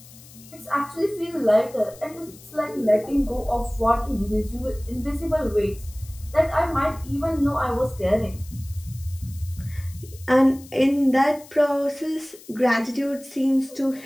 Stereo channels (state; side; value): noise; left; hiss, 21 dB below the sound